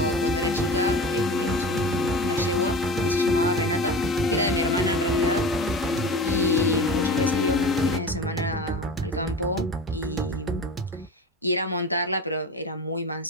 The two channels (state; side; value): normal; both; correlation 0.32